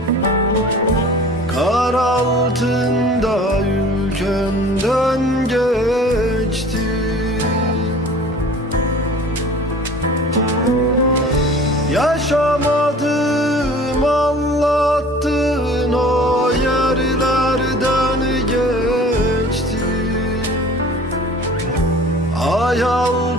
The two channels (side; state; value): both; normal; correlation 0.45